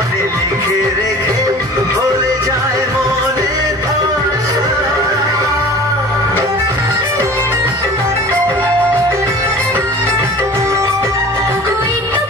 লিখে রেখে ভুলে যায় মনের ভাষা। ওগো এই তো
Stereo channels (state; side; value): normal; both; correlation 0.42